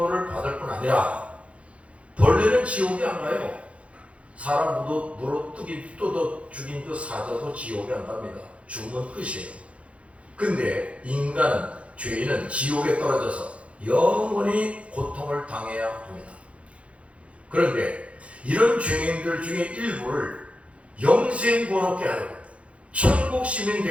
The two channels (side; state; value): left; late; 0.062 ms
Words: 받을 뿐 아니라 벌레는 지옥에 안 가요. 사람 물어 뜯어 죽인 그 사자도 지옥에 안 갑니다. 죽으면 끝이에요. 근데 인간은, 죄인은 지옥에 떨어져서 영원히 고통을 당해야 합니다. 그런데 이런 죄인들 중에 일부를 영생고롭게 하려고 천국 시민